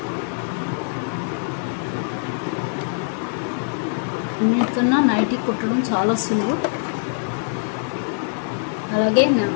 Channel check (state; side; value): silent; right; digital silence